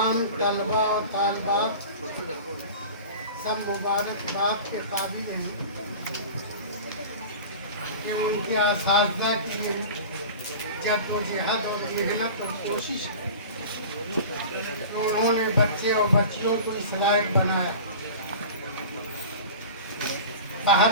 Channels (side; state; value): both; inverted; correlation -0.36